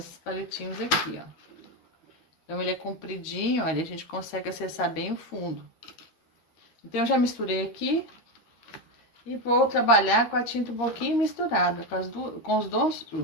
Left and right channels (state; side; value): late; right; 13 ms